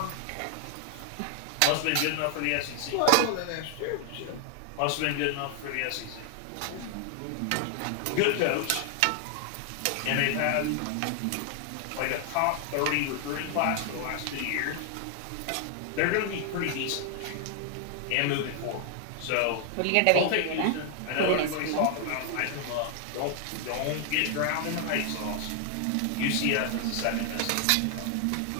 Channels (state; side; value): different; both; correlation 0.00